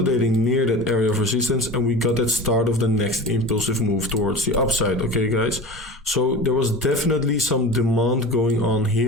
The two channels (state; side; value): normal; both; correlation 0.33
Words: near that area of resistance, and we got that start of the next impulsive move towards the upside. Okay, guys, so there was definitely some demand going on